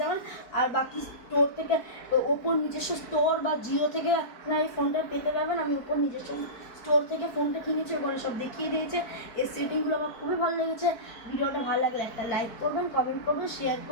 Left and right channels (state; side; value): late; right; 4.5 ms